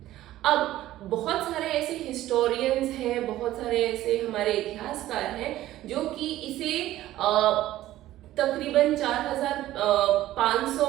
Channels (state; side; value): quieter; left; 14.6 dB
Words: अब बहुत सारे ऐसे हिस्टोरियंस हैं, बहुत सारे ऐसे हमारे इतिहासकार हैं जो कि इसे तकरीबन 4500